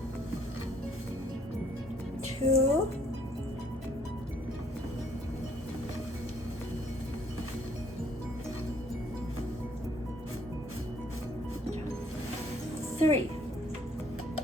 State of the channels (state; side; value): normal; both; correlation 0.62